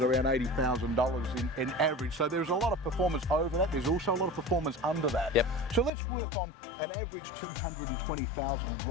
around $80,000 in average. So there's a lot of performance over that. There's also a lot of performance under that. Yep. So let's work on an average $220,000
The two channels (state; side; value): drops out; right; at 5.9 s